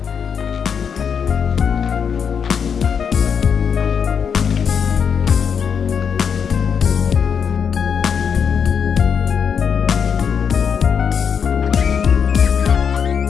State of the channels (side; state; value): right; quieter; 6.9 dB